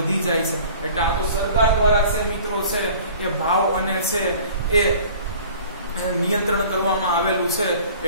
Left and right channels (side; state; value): both; inverted; correlation -0.47